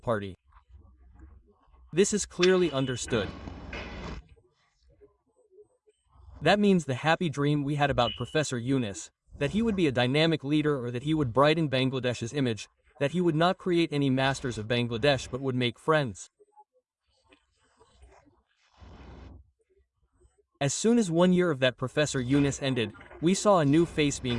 This is clearly understood. That means the happy dream we had about Professor Yunus, that he would be a dynamic leader or that he would brighten Bangladesh's image, that he would not create any masters of Bangladesh but would make friends. As soon as 1 year of that Professor Yunus ended, we saw a new face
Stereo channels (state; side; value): identical; both; correlation 1.00